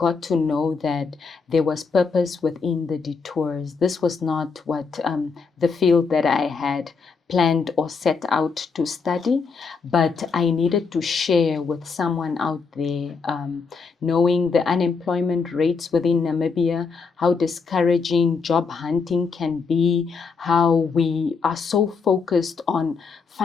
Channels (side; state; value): right; quieter; 5.0 dB